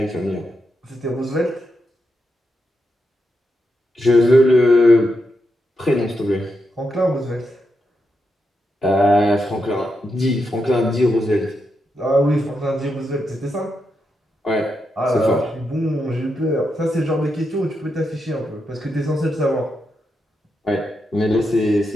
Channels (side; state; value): both; normal; correlation 0.84